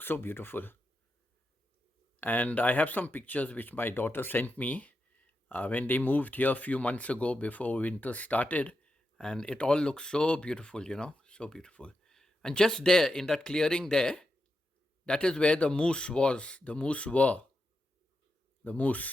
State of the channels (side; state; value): both; normal; correlation 0.87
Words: so beautiful. And I have some pictures which my daughter sent me when they moved here a few months ago before winter started. And it all looks so beautiful, so beautiful. And just there in that clearing there, that is where the moose was. The moose,